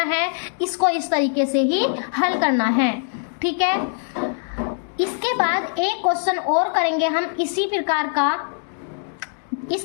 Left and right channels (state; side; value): silent; right; digital silence